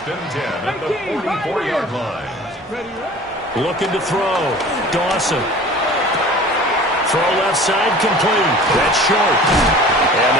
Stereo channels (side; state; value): both; normal; correlation 0.43